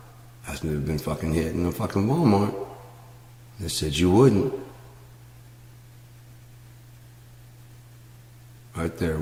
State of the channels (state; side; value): identical; both; correlation 1.00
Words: Asked me to have been fucking hit in a fucking Walmart. They said you wouldn't. Right there,